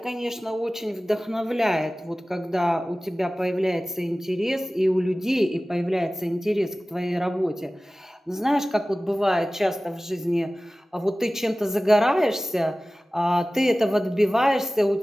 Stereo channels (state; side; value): normal; both; correlation 0.97